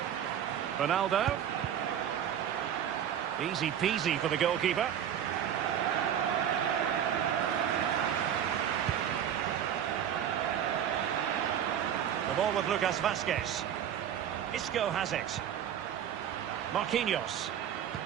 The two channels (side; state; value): left; quieter; 9.6 dB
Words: Ronaldo. Easy peasy for the goalkeeper. The ball with Lucas Vazquez. Isco has it. Marquinhos.